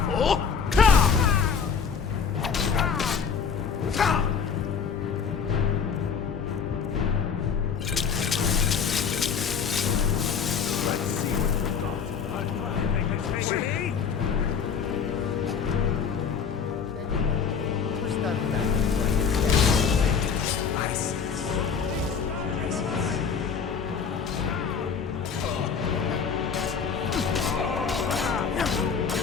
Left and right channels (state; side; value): quieter; right; 6.4 dB